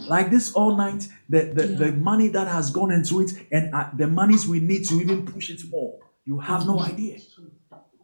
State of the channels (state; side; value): inverted; both; correlation -1.00